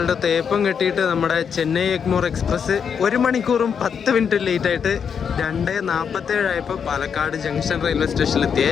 തേപ്പം കെട്ടിയിട്ട് നമ്മുടെ ചെന്നൈ എഗ്മോർ എക്സ്പ്രസ് 1 മണിക്കൂറും 10 മിനിറ്റ് ലേറ്റ് ആയിട്ട് 2:47 ആയപ്പോൾ പാലക്കാട് ജംഗ്ഷൻ റെയിൽവേ സ്റ്റേഷനിലെത്തിയേ.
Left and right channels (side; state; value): right; quieter; 7.0 dB